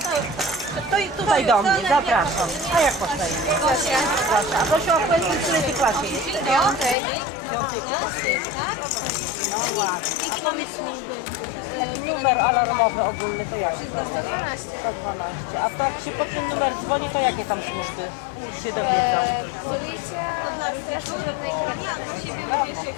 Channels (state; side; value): drops out; right; at 7.0 s